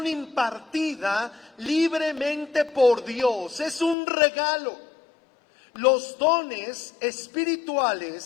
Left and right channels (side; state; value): right; drops out; at 4.0 s